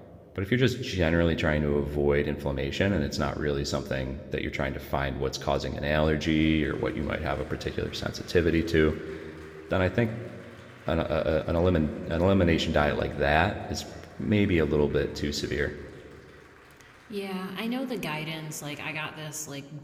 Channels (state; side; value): identical; both; correlation 1.00